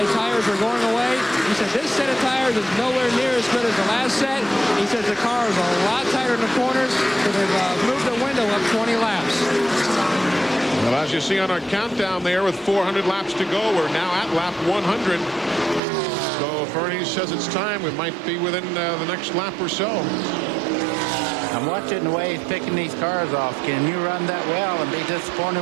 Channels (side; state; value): left; drops out; at 15.8 s